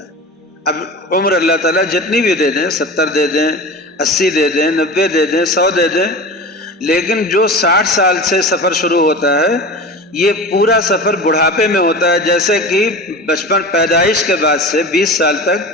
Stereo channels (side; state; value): both; normal; correlation 0.32